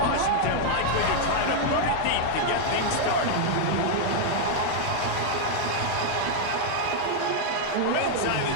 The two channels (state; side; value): different; both; correlation 0.00